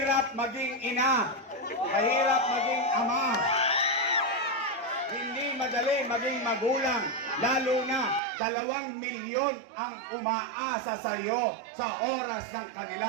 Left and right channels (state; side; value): drops out; left; at 8.2 s